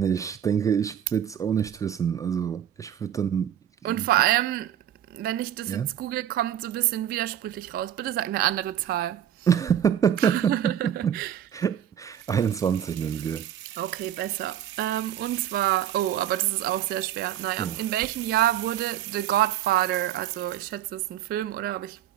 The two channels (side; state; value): left; quieter; 10.4 dB